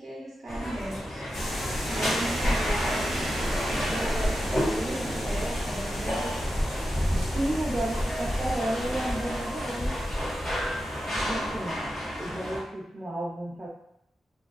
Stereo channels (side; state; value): both; normal; correlation 0.90